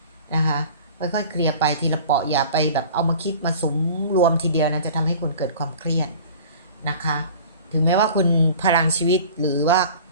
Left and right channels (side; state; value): both; inverted; correlation -0.43